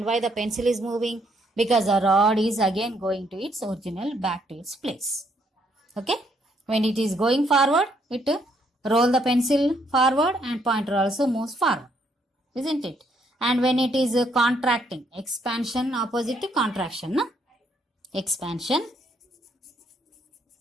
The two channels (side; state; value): both; normal; correlation 0.71